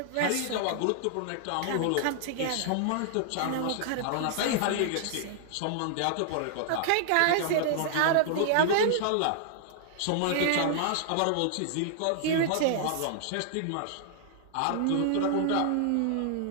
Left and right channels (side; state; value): both; different; correlation -0.01